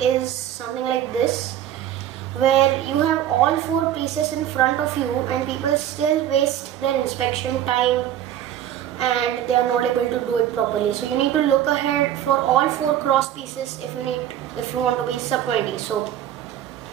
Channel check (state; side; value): quieter; left; 11.2 dB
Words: is something like this, where you have all 4 pieces in front of you and people still waste their inspection time and they are not able to do it properly. So you need to look ahead for all 4 cross pieces if you want to be sub 20. So